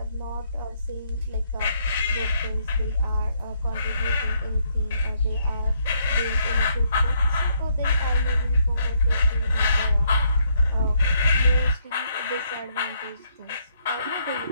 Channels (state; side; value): inverted; both; correlation -0.72